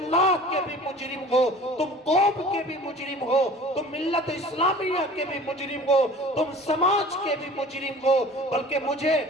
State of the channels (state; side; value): normal; both; correlation 0.44